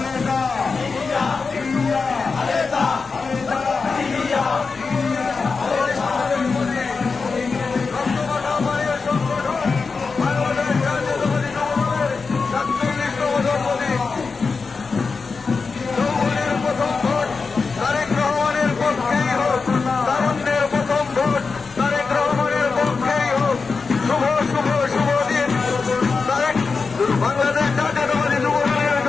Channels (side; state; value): right; quieter; 4.6 dB